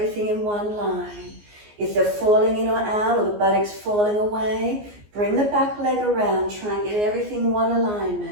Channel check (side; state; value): left; late; 14 ms